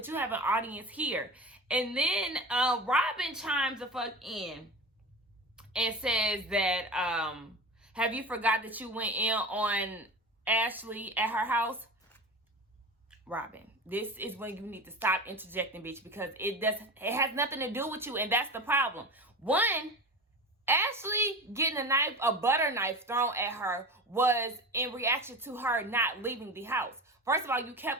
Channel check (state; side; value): normal; both; correlation 0.29